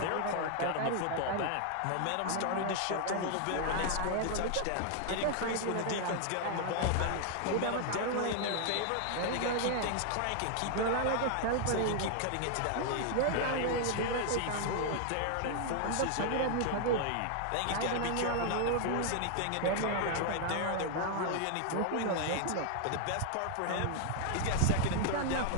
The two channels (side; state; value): both; different; correlation 0.00